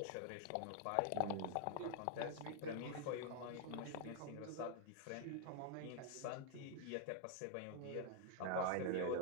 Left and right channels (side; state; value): both; different; correlation 0.00